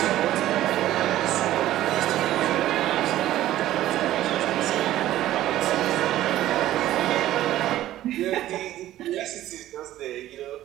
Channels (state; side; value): quieter; left; 13.9 dB